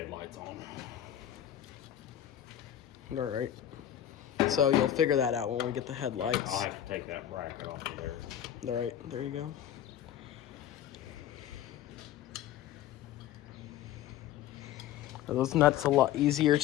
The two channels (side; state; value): right; quieter; 11.3 dB